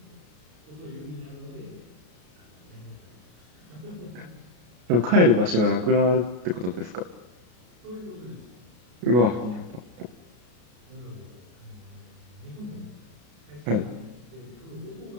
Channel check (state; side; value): late; left; 33 ms